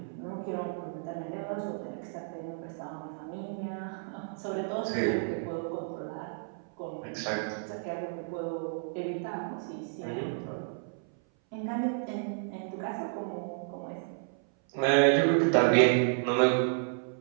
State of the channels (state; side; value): silent; left; 57 dB below the other